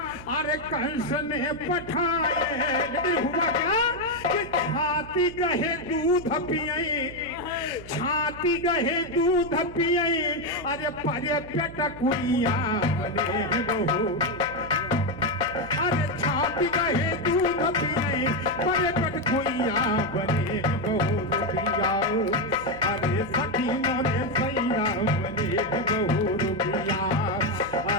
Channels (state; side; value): noise; right; hum, 16 dB below the sound